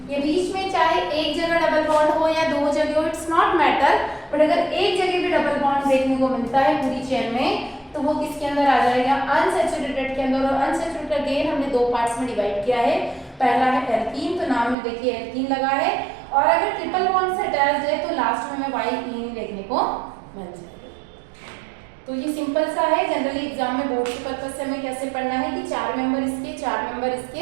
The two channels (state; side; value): drops out; left; at 14.8 s